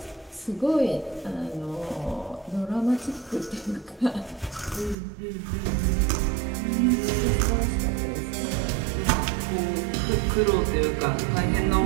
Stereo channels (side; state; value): left; drops out; at 5.0 s